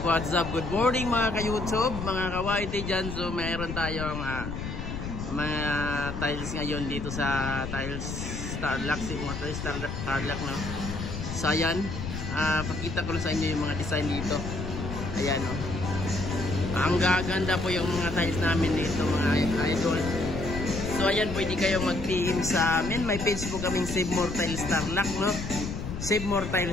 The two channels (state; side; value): noise; left; rumble, 6 dB below the sound